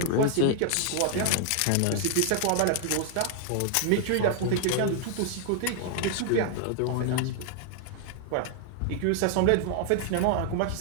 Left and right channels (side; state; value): both; different; correlation 0.00